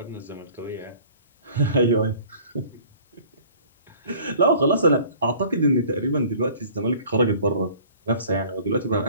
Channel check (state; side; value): inverted; both; correlation -0.50